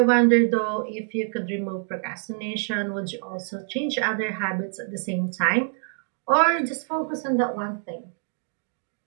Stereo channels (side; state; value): left; silent; 56 dB below the other